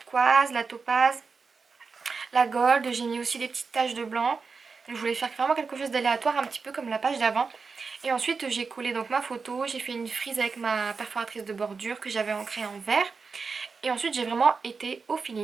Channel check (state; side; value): quieter; left; 4.9 dB